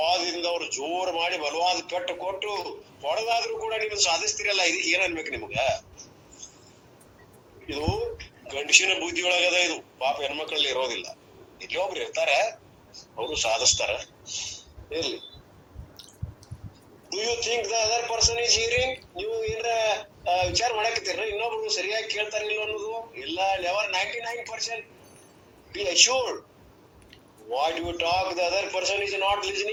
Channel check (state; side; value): identical; both; correlation 1.00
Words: ಅವ್ರು ಜೋರ್ ಮಾಡಿ ಬಲವಾದ ಪೆಟ್ಟು ಕೊಟ್ಟು ಹೊಡೆದಾದ್ರೂ ಕೂಡ ನೀವು ಸಾಧಿಸ್ತಿರಲ್ಲ. ಇದಕ್ಕೆ ಏನ್ ಅನ್ಬೇಕು ನಿಮ್ಗ? ಇದು ಗಂಡಸಿನ ಬುದ್ಧಿ ಒಳಗದ. ಇದು ಪಾಪ ಹೆಣ್ಮಕ್ಳಲ್ಲಿ ಇರೋದಿಲ್ಲ. ಇಲ್ಲಿ ಒಬ್ರು ಇರ್ತಾರ, ಅವರು ಸಾಧಿಸ್ತಾರ. ಇರ್ಲಿ. Do you think the other person is hearing? ನೀವು ಏನ್ರ ವಿಚಾರ ಮಾಡಾಕತ್ತೀರ ಇನ್ನೊಬ್ರು ಸರಿಯಾಗಿ ಕೇಳ್ತಾರ ಇಲ್ಲ ಅನ್ನೋದು? ಇಲ್ಲ, never. 99% be assured what you talk the other person is not